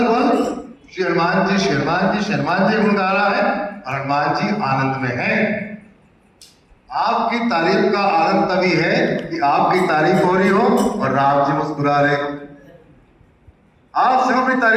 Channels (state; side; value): identical; both; correlation 1.00